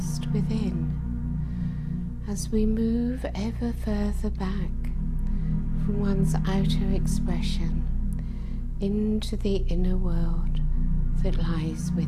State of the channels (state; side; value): identical; both; correlation 1.00